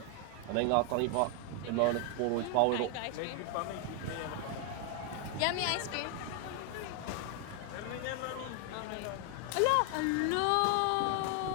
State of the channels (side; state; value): both; different; correlation 0.00